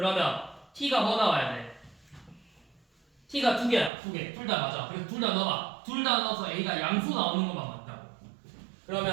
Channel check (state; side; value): drops out; left; at 3.9 s